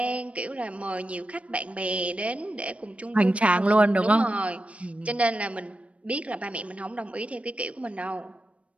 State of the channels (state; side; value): late; left; 0.063 ms